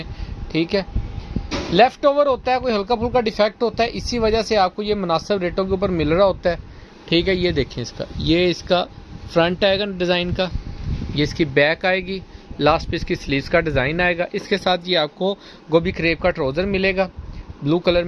ठीक है, लेफ़्ट ओवर होता है, कोई हल्का फुल्का डिफेक्ट होता है, इसी वजह से आपको ये मुनासिब रेटों के ऊपर मिल रहा होता है। ठीक है, ये देखें इसका, ये इसका फ्रंट आएगा डिज़ाइन का, ये इसकी बैक आएगी, लास्ट पे इसकी स्लीव्स का डिज़ाइन आएगा। इसके साथ ये आपको गोभी क्रेप का ट्राउज़र मिलेगा, ब्लू कलर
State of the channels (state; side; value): identical; both; correlation 1.00